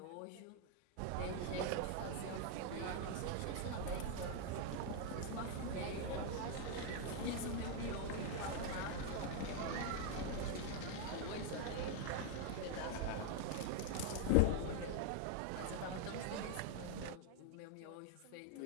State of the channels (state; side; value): different; both; correlation 0.00